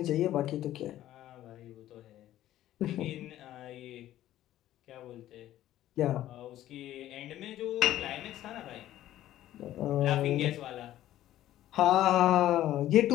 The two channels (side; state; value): right; quieter; 13.4 dB